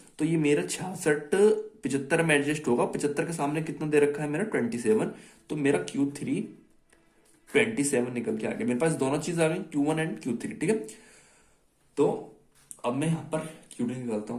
तो ये मेरा 66 75 में एडजस्ट होगा। 75 के सामने कितना दे रखा है मेरा 27, तो मेरा Q3 27 निकल के आ गया। मेरे पास दोनों चीज आ गई, Q1 एंड Q3। ठीक है, तो अब मैं यहां पर QD निकालता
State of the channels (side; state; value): both; identical; correlation 1.00